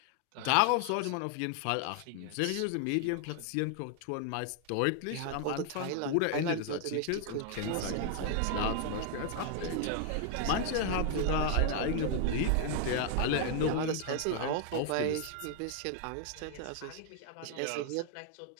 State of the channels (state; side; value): different; both; correlation 0.00